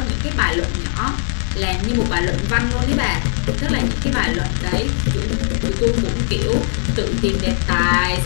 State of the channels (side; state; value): right; silent; digital silence